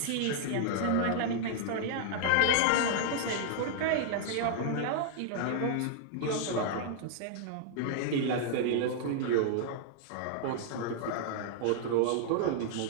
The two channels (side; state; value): both; different; correlation -0.01